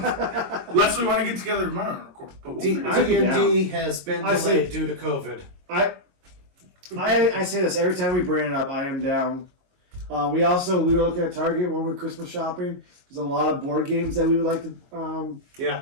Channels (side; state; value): left; late; 22 ms